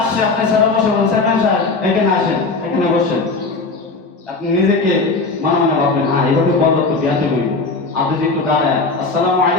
আপনি সেরা বসে বলেন, চেয়ারম্যান সাহেব এখানে আসেন, এখানে বসেন। আপনি নিজেকে মনে ভাববেন, হ্যাঁ এইভাবে বলবো তো বিয়াতে হইব। আপনি যে একটু দাঁড়ায়, আসসালামু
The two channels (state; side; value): quieter; right; 3.8 dB